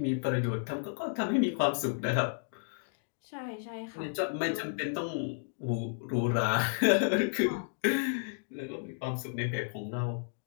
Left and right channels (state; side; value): silent; right; digital silence